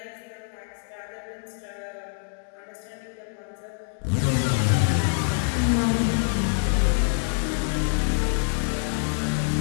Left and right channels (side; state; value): right; silent; digital silence